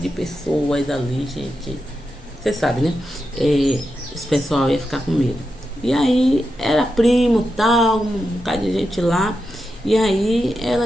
pessoas ali, gente, você sabe, né? Esse pessoal ia ficar com medo. E aí era primo, tal, um bocado de gente lá. E aí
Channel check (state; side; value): normal; both; correlation 0.88